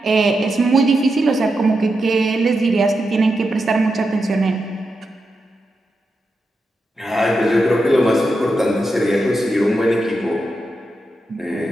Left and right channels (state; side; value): normal; both; correlation 0.87